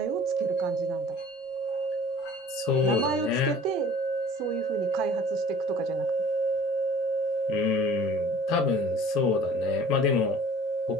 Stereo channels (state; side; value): normal; both; correlation 0.47